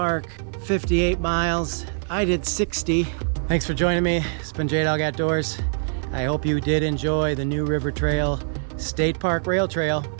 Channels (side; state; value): left; silent; digital silence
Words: 58 miles. I did 60. Thanks for joining me. It's been Jaydog Outdoors. I hope you did enjoy the new River Trail State Park Rail Trail.